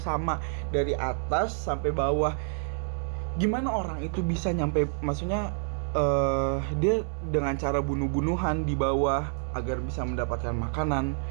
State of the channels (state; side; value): silent; left; 59 dB below the other